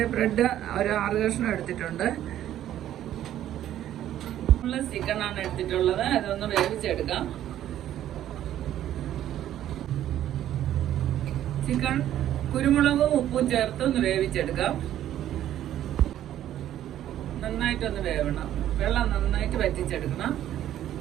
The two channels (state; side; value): quieter; left; 12.0 dB